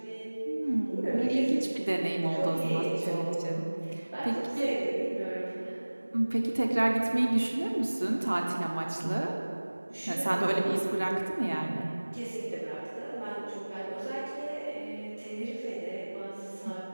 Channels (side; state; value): both; inverted; correlation -1.00